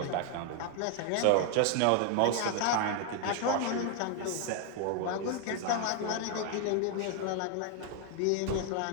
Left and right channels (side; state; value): both; different; correlation 0.00